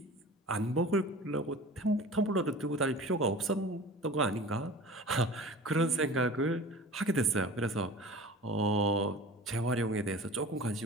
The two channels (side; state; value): both; normal; correlation 0.38